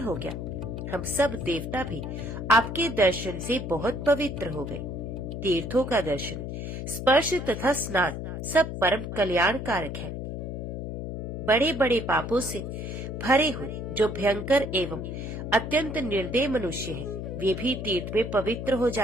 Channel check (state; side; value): noise; left; hum, 6 dB below the sound